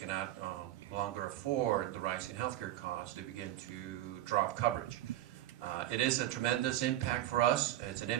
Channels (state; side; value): quieter; left; 13.9 dB